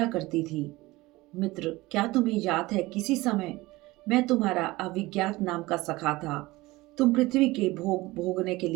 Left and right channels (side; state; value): left; quieter; 20.1 dB